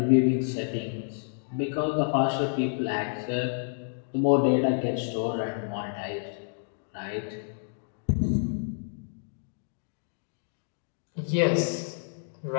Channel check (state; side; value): silent; right; digital silence